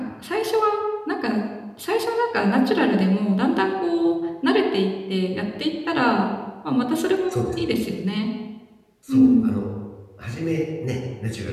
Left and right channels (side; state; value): both; identical; correlation 1.00